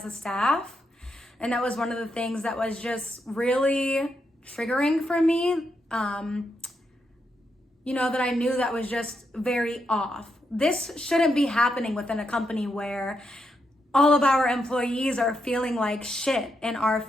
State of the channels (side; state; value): both; normal; correlation 0.82